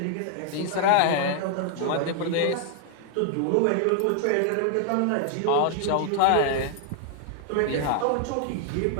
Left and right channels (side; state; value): both; different; correlation 0.00